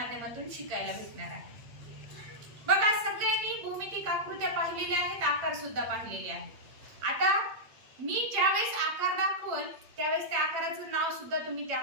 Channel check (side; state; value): left; late; 8.5 ms